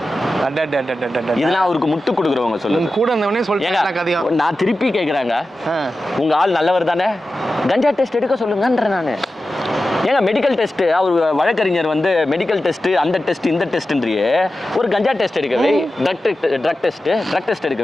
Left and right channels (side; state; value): both; normal; correlation 0.93